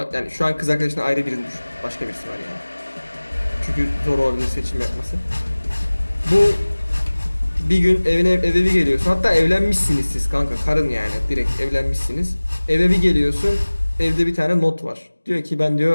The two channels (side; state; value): both; inverted; correlation -1.00